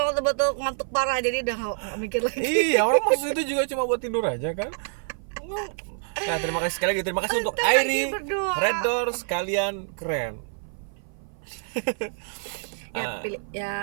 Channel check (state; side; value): silent; left; 56 dB below the other